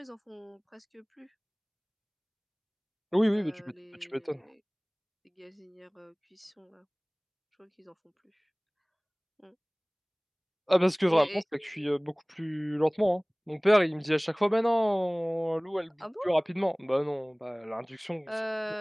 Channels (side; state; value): both; identical; correlation 1.00